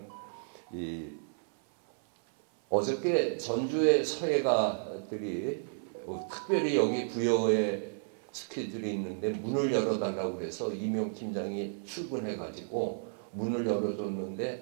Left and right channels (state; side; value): silent; left; 56 dB below the other